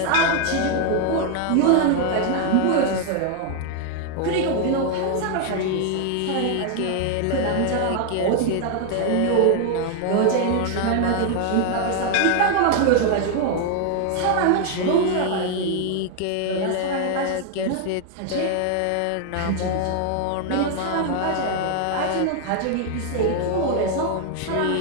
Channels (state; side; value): different; both; correlation 0.00